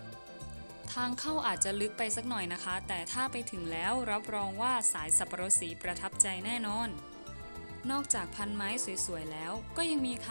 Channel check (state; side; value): inverted; both; correlation -1.00